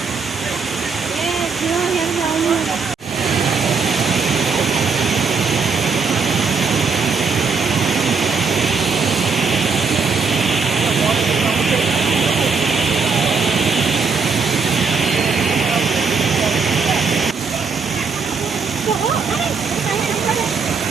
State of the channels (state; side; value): quieter; left; 5.1 dB